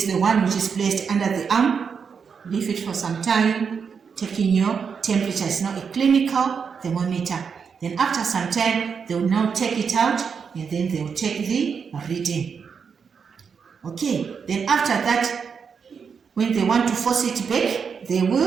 the one which is placed under the arm. Leave it for some time, taking your temperature. It's now a clinical thermometer. Then after some time, they will now take it out, and then they will take the reading. Okay, then after that, when they want to force it back, they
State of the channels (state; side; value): quieter; left; 6.2 dB